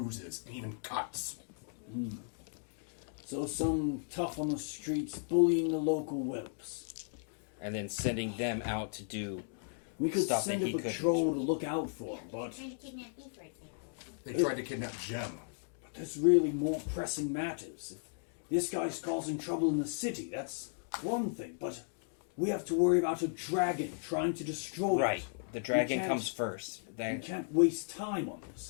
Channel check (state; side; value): silent; right; digital silence